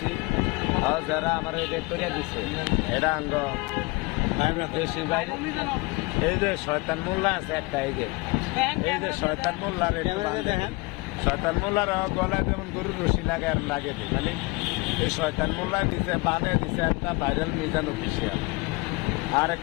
আর যারা আমার এটা করে দিছে এটা আঙ্গ বেশি ভাই এই যে শয়তান মোল্লা আছে একটা এই যে শয়তান মোল্লার দেখেন শয়তান মোল্লার গলায় যেমন গরুর রশি লাগে আর লাগে দিই মানে এই শয়তান মোল্লা দিছে বানিয়ে দিছে একটা ভাইরাল মিজান অফিসিয়াল আর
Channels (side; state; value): right; quieter; 25.6 dB